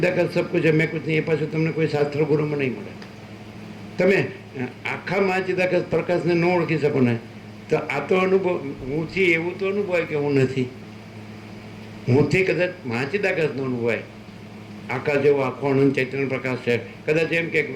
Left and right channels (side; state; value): both; identical; correlation 1.00